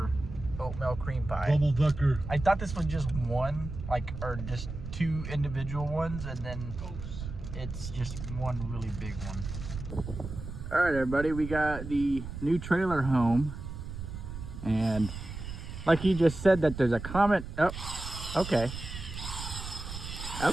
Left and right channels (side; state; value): right; noise; rumble, 9 dB below the sound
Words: oatmeal cream pie. Double-decker. I thought this was just one, or just two individual ones, and then it's just one really big one. All right, everybody, we got the new trailer home, and like he just said that there's a comment. Oh, okay.